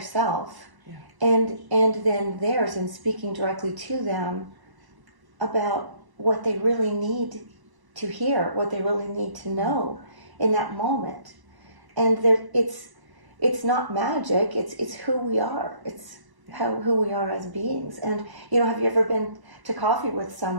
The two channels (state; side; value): late; left; 1.0 ms